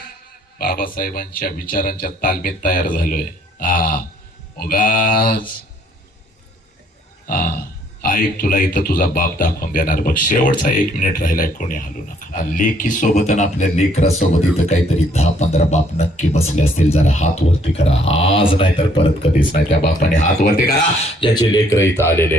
बाबासाहेबांच्या विचारांच्या तालमीत तयार झालोय. उगाच ऐक, तुला इथं तुझा बाप दाखवून देणार बघ. शेवटचा 1 मिनिट राहिलाय, कोणी हलू नका. लेकी सोबत आणि आपल्या लेकरासोबत इथं काहीतरी 10-15 बाप नक्की बसले असतील. जरा हात वरती करा, आज नाही तर परत कधीच नाही. त्या बापाने हात वरती करा, ज्याचे लेकर इथं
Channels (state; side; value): normal; both; correlation 0.64